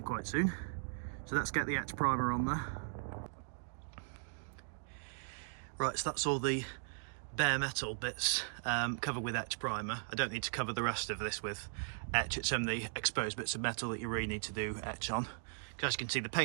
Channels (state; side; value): silent; left; digital silence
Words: quite soon. So let's get the etch primer on there. Right, so that's all the bare metal bits covered with etch primer. I don't need to cover the rest of this with etch. It's only the exposed bits of metal that you really need to do etch on. As you can see, the